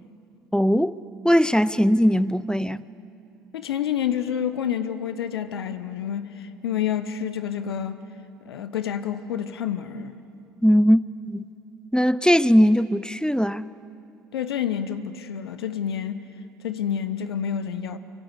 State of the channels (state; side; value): normal; both; correlation 0.76